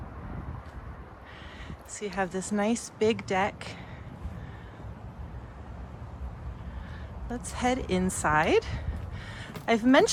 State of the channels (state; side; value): identical; both; correlation 1.00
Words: So you have this nice big deck. Let's head inside. I've